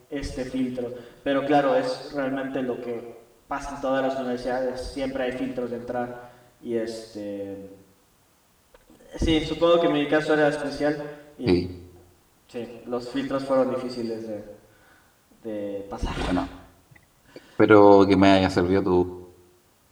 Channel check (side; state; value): both; identical; correlation 1.00